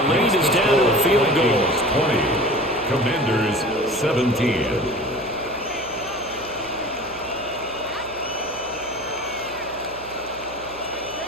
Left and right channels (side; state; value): right; noise; hum, 21 dB below the sound